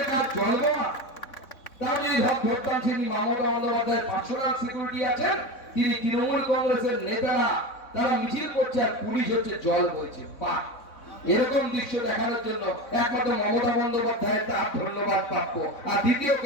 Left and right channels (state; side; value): late; right; 3.6 ms